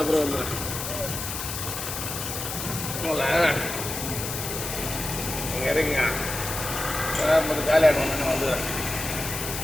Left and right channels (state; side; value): noise; left; hiss, 5 dB below the sound